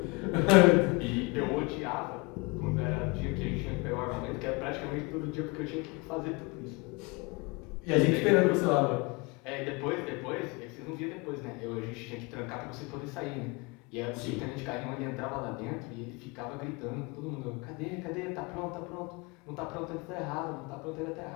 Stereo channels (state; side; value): quieter; right; 27.8 dB